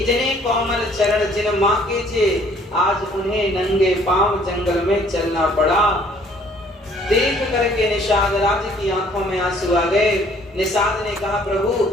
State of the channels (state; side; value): normal; both; correlation 0.59